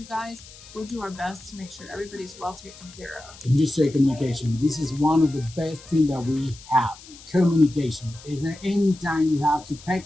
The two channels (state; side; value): noise; left; hiss, 19 dB below the sound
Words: guys, we'll do our best to make sure everybody's well taken care of. And you say communication. This is one of the best things that we have. Communication. Is there any time you have to